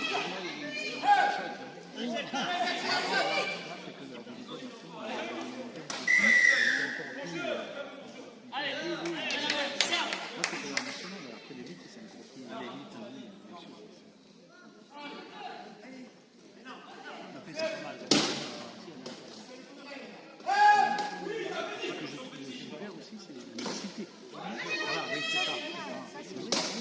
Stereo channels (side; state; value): both; identical; correlation 1.00